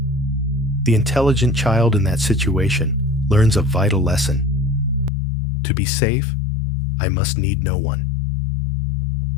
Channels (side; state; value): right; drops out; at 5.1 s